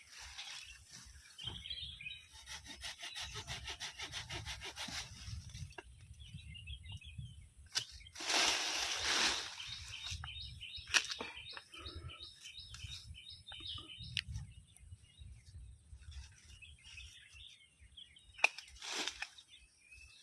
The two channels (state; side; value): identical; both; correlation 1.00